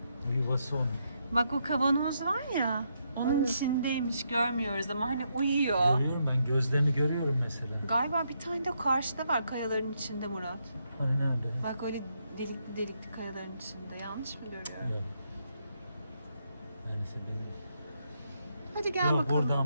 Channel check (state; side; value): inverted; both; correlation -0.78